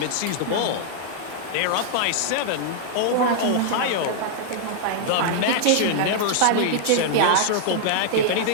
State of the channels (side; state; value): both; different; correlation -0.01